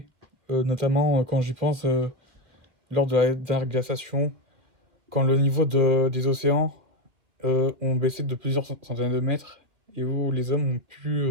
notamment quand j'y pense, lors de la dernière glaciation, quand le niveau des océans ont baissé de plusieurs centaines de mètres et où les hommes ont pu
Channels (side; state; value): left; late; 2.3 ms